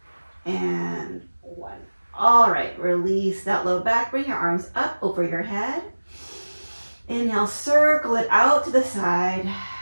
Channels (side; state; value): both; inverted; correlation -1.00